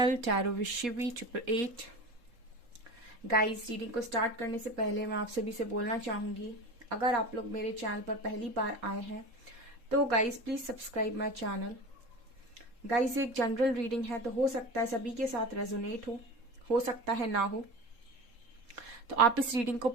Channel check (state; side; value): late; left; 3.7 ms